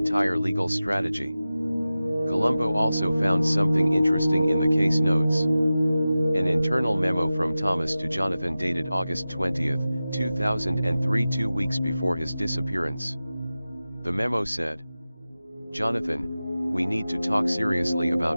legal strategy. Columbo also found something interesting in the case notes. An internal memo from Thomas to Jonathan dated August 20, 2003, 2 weeks before his disappearance. The memo said, "Jonathan, we need to talk seriously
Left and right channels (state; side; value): inverted; both; correlation -0.95